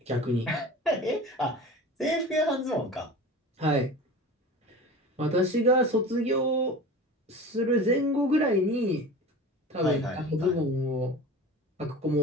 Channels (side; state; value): both; normal; correlation 0.35